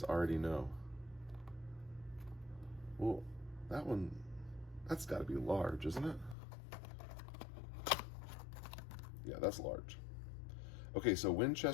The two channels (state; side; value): drops out; right; at 6.4 s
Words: already know. Well, that's got to be large, isn't it? Yeah, that's large. Okay, so